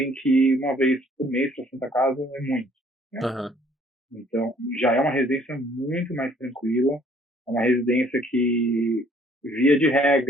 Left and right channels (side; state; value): both; normal; correlation 0.60